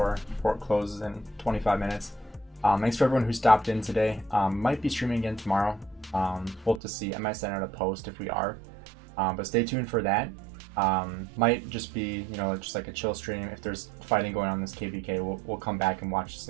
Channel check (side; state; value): left; drops out; at 6.8 s